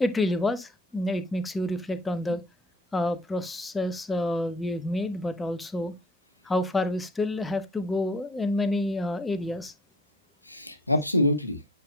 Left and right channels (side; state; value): both; normal; correlation 0.48